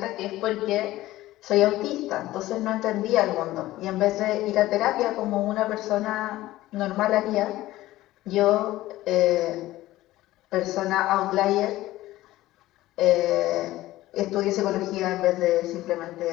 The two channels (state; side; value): quieter; right; 16.3 dB